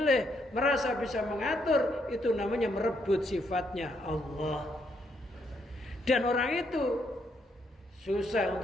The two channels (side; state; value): both; normal; correlation 0.75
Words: merasa bisa mengatur, itu namanya merebut sifatnya Allah. Dan orang itu susah